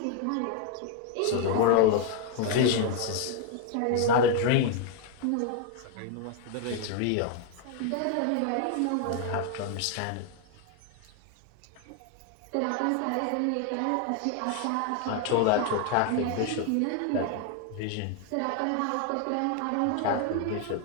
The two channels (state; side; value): different; both; correlation 0.01